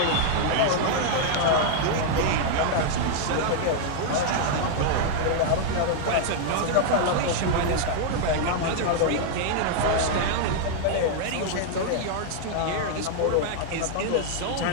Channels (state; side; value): different; both; correlation -0.01